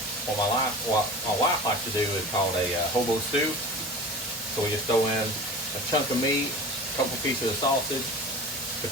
what my wife likes to do is called a hobo stew. So we just throw in a chunk of meat, a couple pieces of sausage,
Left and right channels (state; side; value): normal; both; correlation 0.36